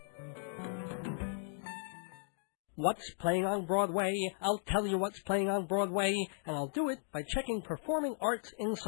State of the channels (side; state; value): right; silent; digital silence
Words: What's playing on Broadway? I'll tell you what's playing on Broadway, and I'll do it by checking Performing Arts